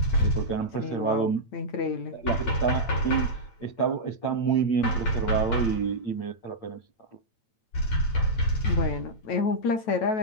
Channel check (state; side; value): late; right; 9.0 ms